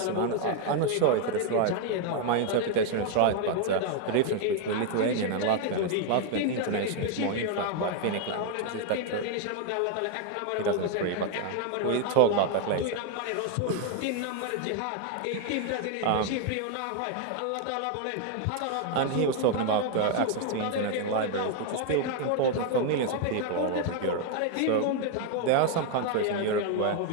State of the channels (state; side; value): different; both; correlation 0.00